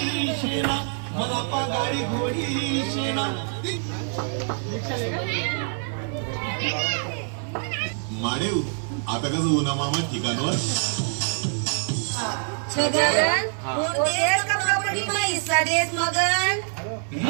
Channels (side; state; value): left; silent; 62 dB below the other